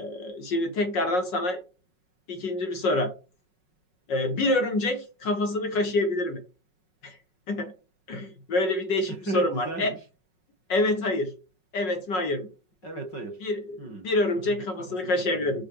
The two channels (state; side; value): late; right; 5.4 ms